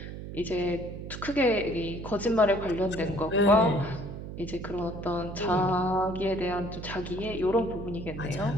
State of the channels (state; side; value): noise; right; hum, 9 dB below the sound